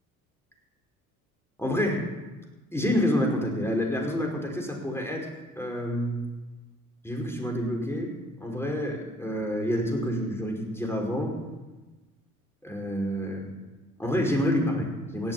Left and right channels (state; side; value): normal; both; correlation 0.62